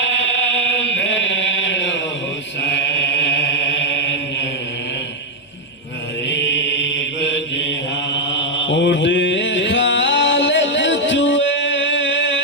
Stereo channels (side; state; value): both; normal; correlation 0.01